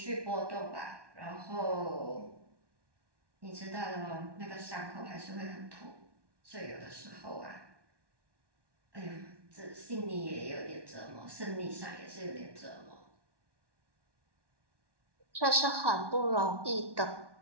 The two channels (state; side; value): late; left; 1.1 ms